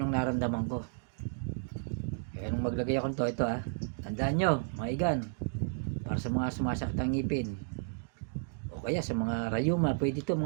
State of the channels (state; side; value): silent; left; digital silence